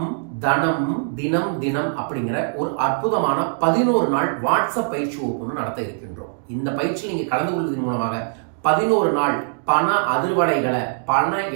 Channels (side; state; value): left; silent; digital silence